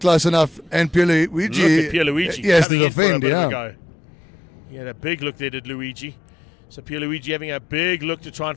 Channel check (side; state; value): right; drops out; at 2.7 s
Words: enough. And Pierluigi. Look at Pierluigi. He has to coming in for a defend, bit of a yeah. go. He had a big look there, did Luigi. So Pierluigi having a big look to try and